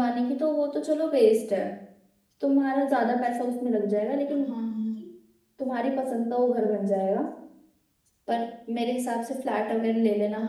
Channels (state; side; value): identical; both; correlation 1.00